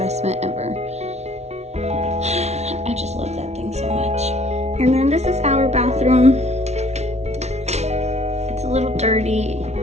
ever. I just love that thing so much. And then this is our bathroom. It's a little dirty.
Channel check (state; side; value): late; left; 0.32 ms